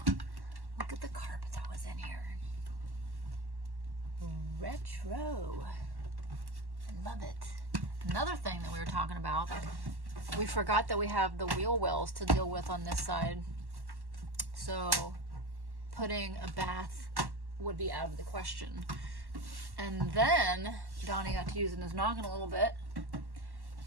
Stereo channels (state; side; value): late; left; 1.1 ms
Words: Look at the carpet that was in here. Retro. I love it. Another thing that we were talking about, we forgot that we have the wheel wells to deal with on this side. So putting a bath would be out of the question. And then Donnie got to using his noggin a little bit.